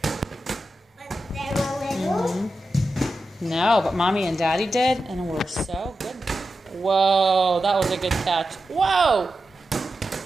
When they were little. No, but Mommy and Daddy did, and we're so good. Whoa, that was a good catch. Whoa!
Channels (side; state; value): both; normal; correlation 0.91